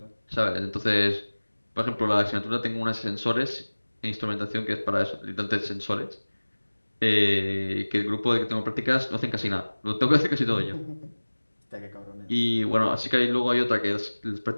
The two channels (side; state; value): both; inverted; correlation -1.00